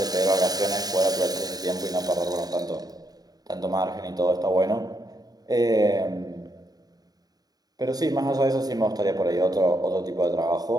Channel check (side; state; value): left; late; 0.18 ms